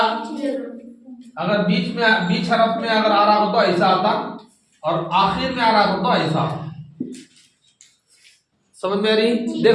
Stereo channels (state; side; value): identical; both; correlation 1.00